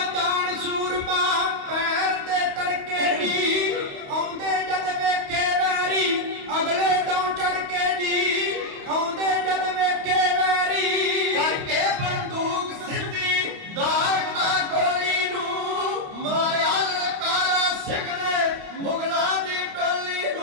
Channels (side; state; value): left; late; 28 ms